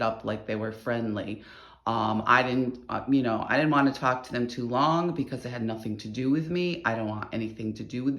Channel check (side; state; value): both; identical; correlation 1.00